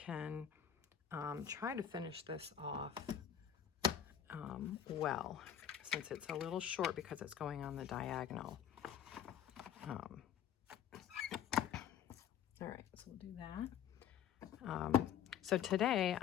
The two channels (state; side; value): quieter; right; 9.1 dB